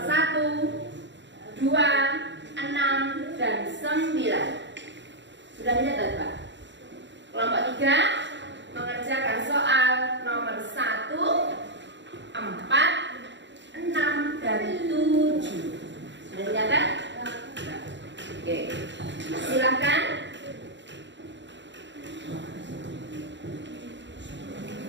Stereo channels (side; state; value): left; late; 0.53 ms